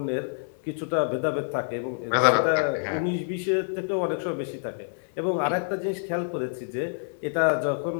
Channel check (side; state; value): right; silent; digital silence